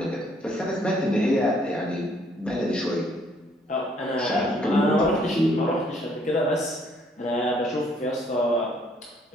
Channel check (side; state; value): both; normal; correlation 0.65